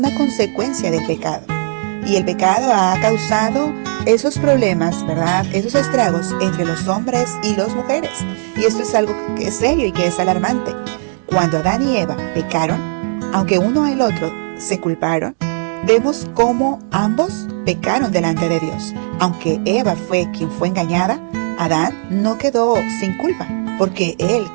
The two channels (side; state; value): left; silent; digital silence